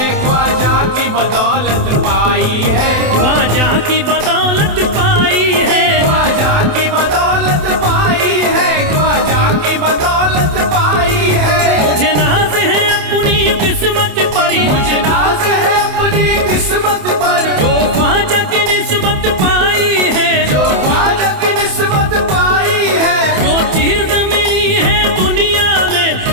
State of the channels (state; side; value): late; left; 27 ms